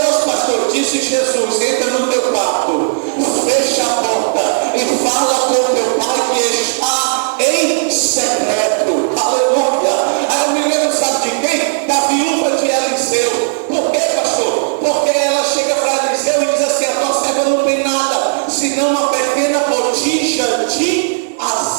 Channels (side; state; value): left; silent; digital silence